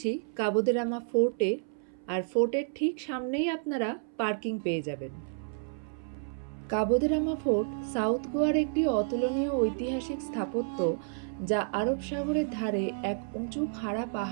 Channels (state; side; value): silent; left; 57 dB below the other